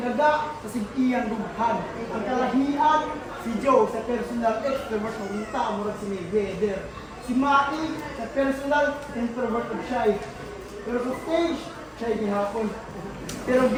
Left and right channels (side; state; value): both; identical; correlation 1.00